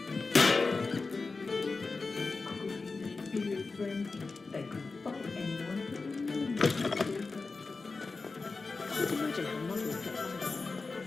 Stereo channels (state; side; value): quieter; right; 4.0 dB